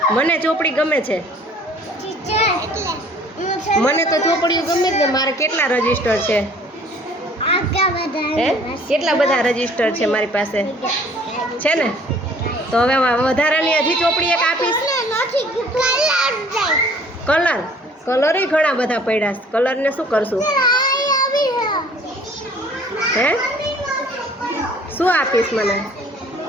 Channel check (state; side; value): normal; both; correlation 0.54